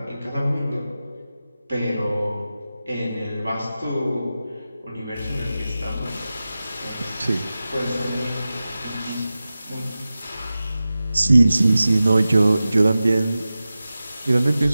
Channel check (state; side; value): inverted; both; correlation -0.95